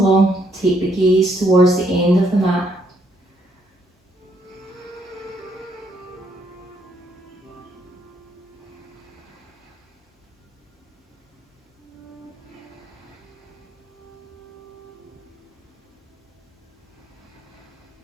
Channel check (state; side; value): normal; both; correlation 0.71